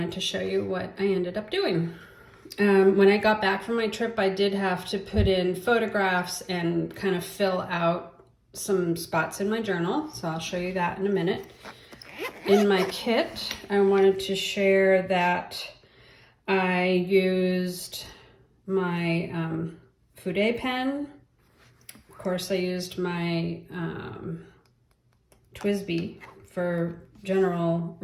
to show you what I ended up doing. When I got back from my trip, I did have to put in photographs and kind of fill out some spots in my journal. So I'll show you that in a minute. In my kit, I wanted to share that I used my Fude pen. Of course, I used my TWSBI for general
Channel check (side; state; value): both; identical; correlation 1.00